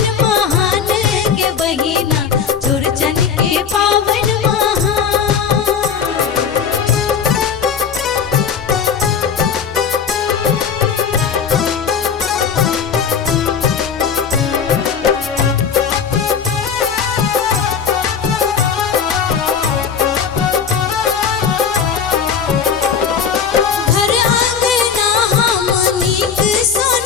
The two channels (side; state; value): right; quieter; 6.8 dB